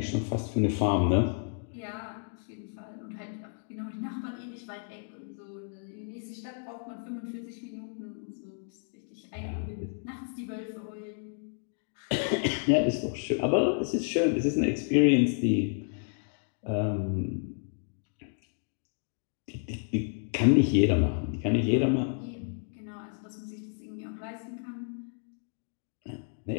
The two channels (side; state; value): right; silent; 57 dB below the other